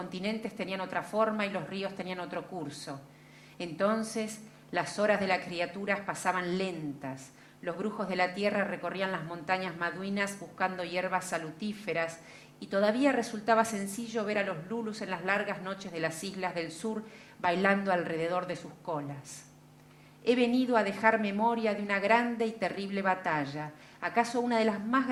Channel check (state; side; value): identical; both; correlation 1.00